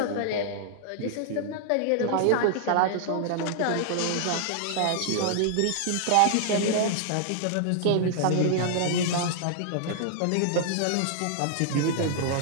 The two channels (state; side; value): different; both; correlation -0.01